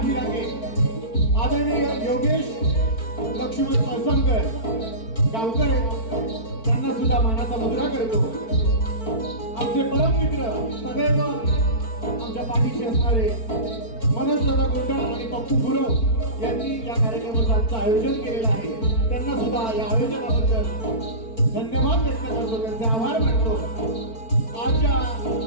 पाठीराखे आदरणीय योगेश लक्ष्मण कळसमकर गावकर आहेत. त्यांना सुद्धा मानाचा मुद्रा करतो. आमचे परम मित्र सदैव आमच्या पाठीशी असणारे मनोज दादा गोंडल आणि पप्पू गुरव यांनी या कार्यक्रमाचं आयोजन केलेलं आहे. त्यांना सुद्धा या आयोजनाबद्दल धन्यवाद व्यक्त करतो, त्यांचे आभार मानतो. आजच्या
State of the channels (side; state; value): right; late; 4.5 ms